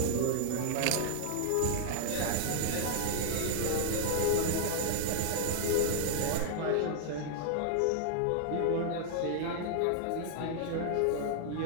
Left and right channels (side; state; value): both; different; correlation 0.00